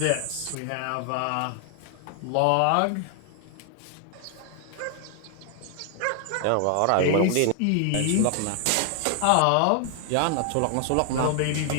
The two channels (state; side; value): different; both; correlation 0.00